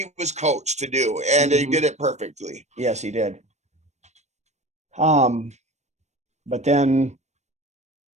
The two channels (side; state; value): left; late; 0.33 ms